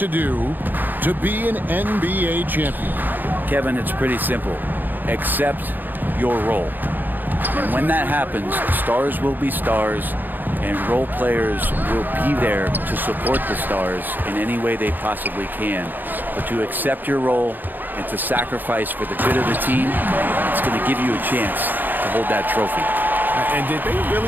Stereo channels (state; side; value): late; left; 0.088 ms